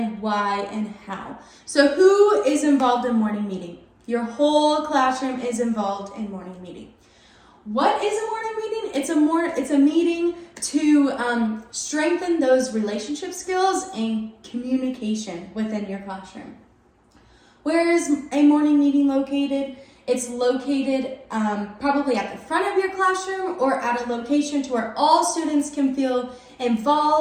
why, and how. So who is involved in morning meeting? Your whole classroom is involved in morning meeting. What is a morning meeting? It's a meeting to strengthen those relationship skills and communication within your classroom. Where is a morning meeting located? It's located probably at the front of your classroom or at a location to where all students can feel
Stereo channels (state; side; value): identical; both; correlation 1.00